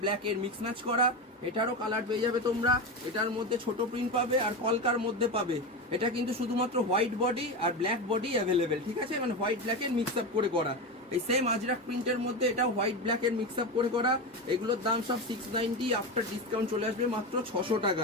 ব্ল্যাক এর মিক্স ম্যাচ করা। এটারও কালার পেয়ে যাবে তোমরা। এটার মধ্যে ছোট প্রিন্ট পাবে আর কলকার মধ্যে পাবে। এটা কিন্তু শুধুমাত্র হোয়াইট বডি আর ব্ল্যাক বডি অ্যাভেলেবেল, ঠিক আছে, মানে হোয়াইট ব্ল্যাক এর মিক্স আপ করে করা। এই সেম আজরাক প্রিন্টের মধ্যে এটা হোয়াইট ব্ল্যাক এর মিক্স আপ করে করা। এগুলোর দাম সব 690, আফটার ডিসকাউন্ট চলে আসবে মাত্র 600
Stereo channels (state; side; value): normal; both; correlation 0.19